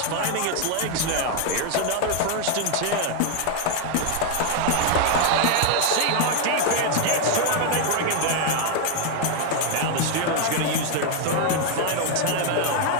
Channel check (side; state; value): both; different; correlation 0.00